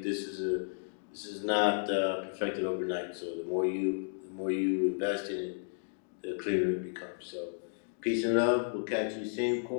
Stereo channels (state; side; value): silent; right; digital silence